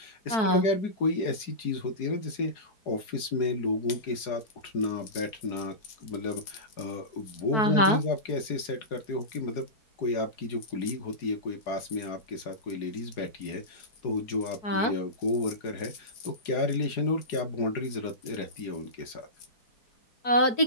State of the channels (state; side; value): late; right; 4.8 ms